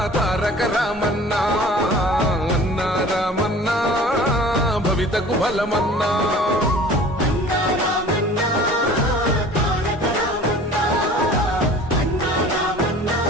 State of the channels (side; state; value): both; normal; correlation 0.45